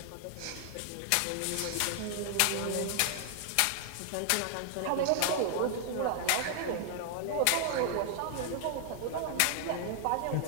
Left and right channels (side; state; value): both; different; correlation 0.00